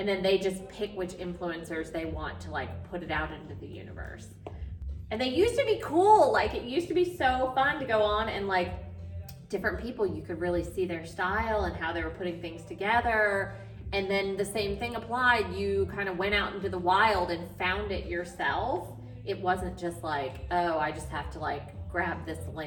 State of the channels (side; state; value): both; identical; correlation 1.00